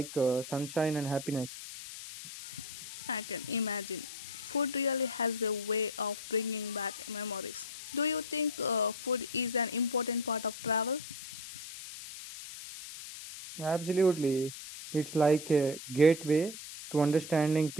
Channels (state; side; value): noise; left; hiss, 11 dB below the sound